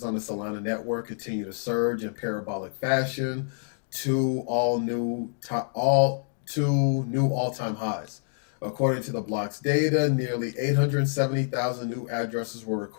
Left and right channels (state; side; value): silent; right; digital silence